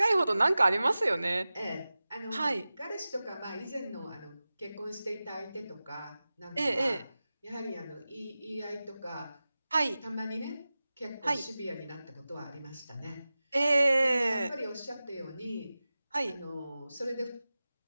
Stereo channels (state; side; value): inverted; both; correlation -0.96